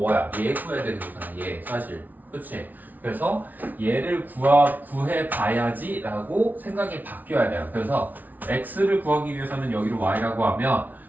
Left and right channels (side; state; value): left; late; 0.080 ms